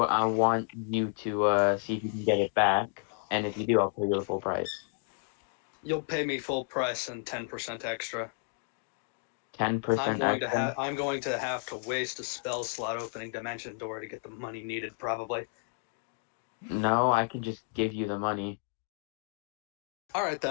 I want you to see if you can get it back, and if you do, I'll pay you the full price. You'll pay me full price and 10% extra. 10% extra? I'm going to have to waste a spell slot opening Dimension Door to get the money needed, probably. No, I can just give you the money. Alright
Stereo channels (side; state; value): right; silent; 57 dB below the other